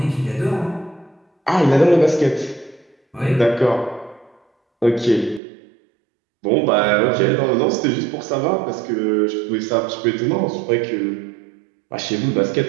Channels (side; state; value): left; drops out; at 5.4 s